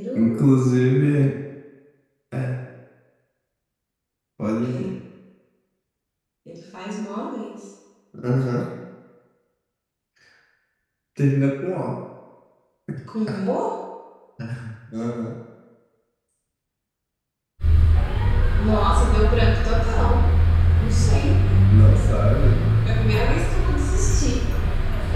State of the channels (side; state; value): both; identical; correlation 1.00